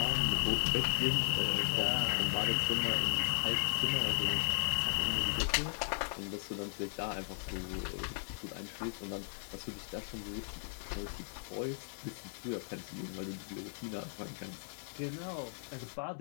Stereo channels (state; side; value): silent; right; 54 dB below the other